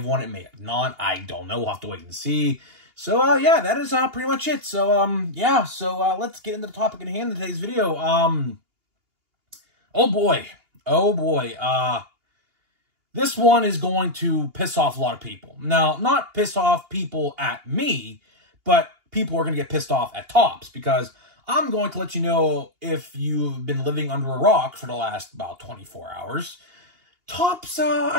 won it, may have not. I don't know. We'll have to wait and see. So, yeah, that is pretty much it. So, yeah, so let's get into the topic at hand in today's video. Oh, boy. Oh, boy. This one is going to piss off a lot of people. Now, not piss off people at me, but people are going to get pissed off at Topps, because I'm going to let you know, if you've been living under a rock for the last about 24 hours, Topps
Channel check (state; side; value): late; left; 2.8 ms